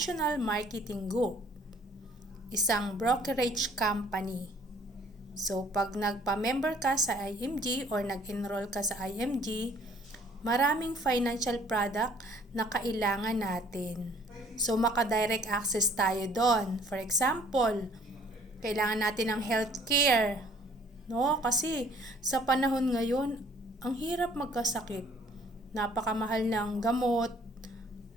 Marketing Group, isang brokerage company. So, pag nagpa-member ka sa IMG or nag-enroll ka sa IMG, maraming financial product na kailangan natin. So, maka-direct access tayo doon. For example, kailangan natin ng healthcare. No? Kasi sa panahon ngayon, ang hirap magkasakit. Napakamahal ng gamot,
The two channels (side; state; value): both; normal; correlation 0.57